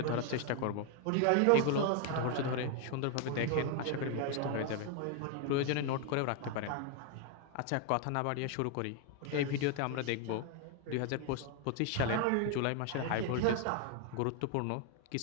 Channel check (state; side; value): different; both; correlation 0.00